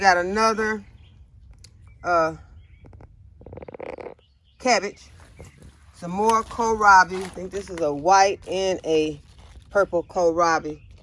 another cabbage, some more kohlrabi. I think this is a white and a purple kohlrabi.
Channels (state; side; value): identical; both; correlation 1.00